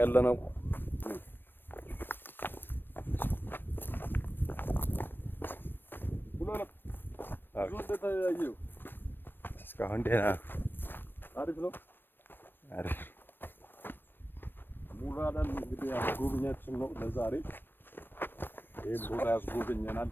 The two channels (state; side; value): late; right; 0.096 ms